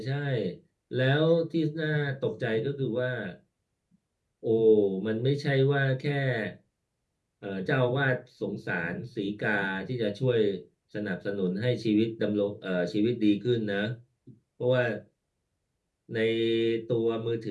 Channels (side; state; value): both; identical; correlation 1.00